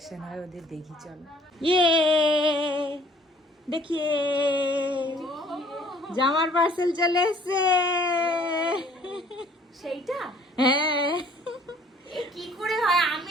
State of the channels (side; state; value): both; normal; correlation 0.57